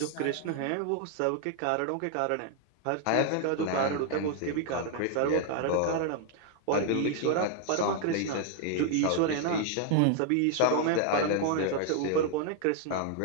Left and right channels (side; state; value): both; different; correlation 0.00